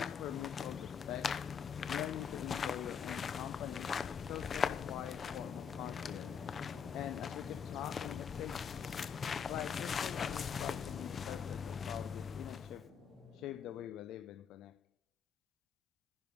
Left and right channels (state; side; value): quieter; right; 7.2 dB